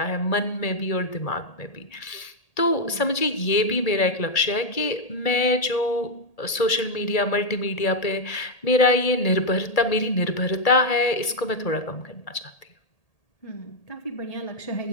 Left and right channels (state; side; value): late; right; 1.8 ms